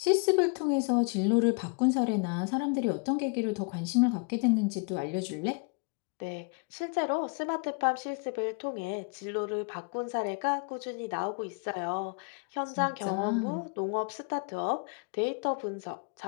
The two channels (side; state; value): right; quieter; 34.1 dB